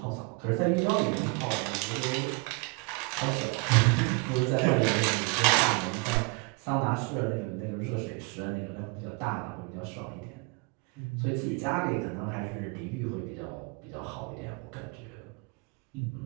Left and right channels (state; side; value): quieter; left; 30.8 dB